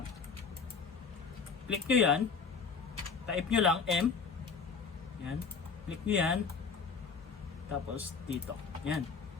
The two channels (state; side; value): quieter; right; 5.4 dB